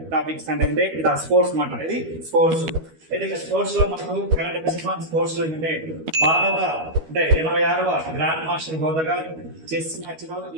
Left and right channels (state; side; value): late; left; 13 ms